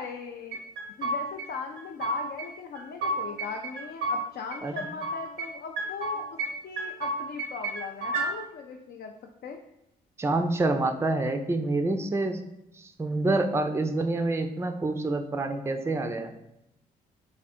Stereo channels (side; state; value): both; normal; correlation 0.52